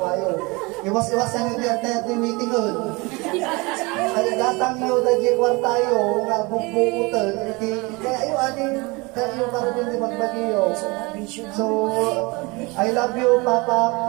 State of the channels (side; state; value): left; quieter; 25.9 dB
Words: Iwas-iwasan nyo di at meeting yun. Ay datang nyo dagi kwartayo, nga bubuutan, kaya yung aning kayo para din di magbagiyo. So, I love you, Papa.